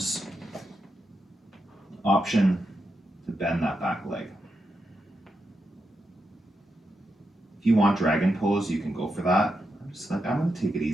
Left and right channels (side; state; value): both; normal; correlation 0.86